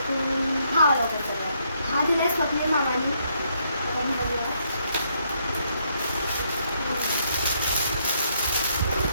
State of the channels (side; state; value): both; inverted; correlation -0.73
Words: हा दिलाय स्वप्नील मामानी.